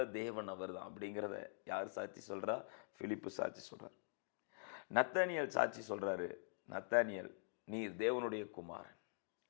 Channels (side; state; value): right; silent; digital silence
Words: தேவன் அவர் தான் அப்படிங்கிறத யார் சாட்சி சொல்றா? பிலிப்பு சாட்சி சொல்றார். நத்தானியல் சாட்சி சொல்றாரு. நத்தானியல், நீர் தேவனுடைய குமாரன்.